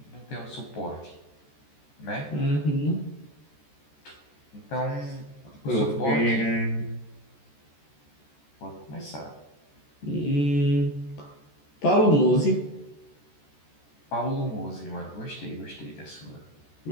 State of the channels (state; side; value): late; right; 14 ms